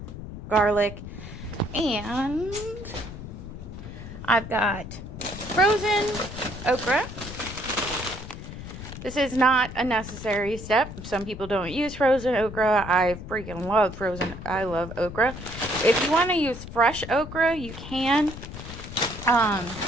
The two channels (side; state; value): left; noise; rumble, 11 dB below the sound